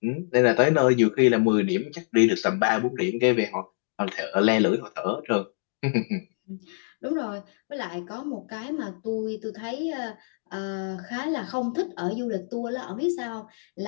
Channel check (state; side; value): silent; right; 61 dB below the other